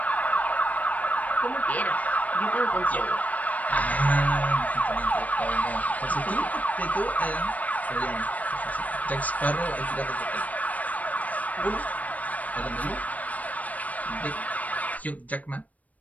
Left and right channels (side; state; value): right; late; 0.073 ms